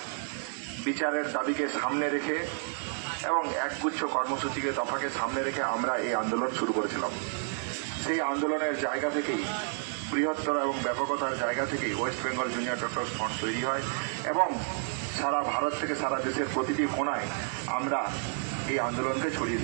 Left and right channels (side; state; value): left; silent; 58 dB below the other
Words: বিচারের দাবিকে সামনে রেখে এবং একগুচ্ছ কর্মসূচিকে দফাকে সামনে রেখে আমরা এই আন্দোলন শুরু করেছিলাম। সেই আন্দোলনের জায়গা থেকেই, বৃহত্তর এবং ব্যাপকতার জায়গা থেকেই West Bengal junior doctors front তৈরি হয় এবং সারা ভারত থেকে সারা দেশের প্রতিটি কোণায় আমরা এই আন্দোলনকে ছড়িয়ে